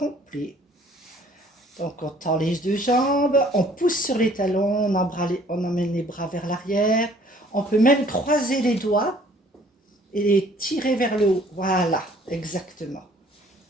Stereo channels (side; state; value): both; normal; correlation 0.57